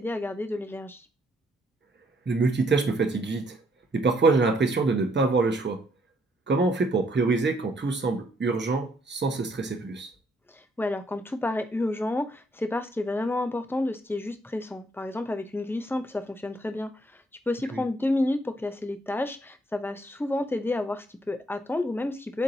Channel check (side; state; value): both; normal; correlation 0.70